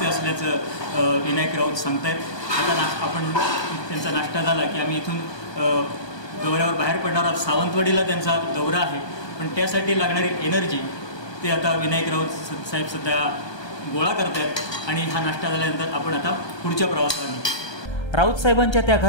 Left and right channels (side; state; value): right; late; 1.3 ms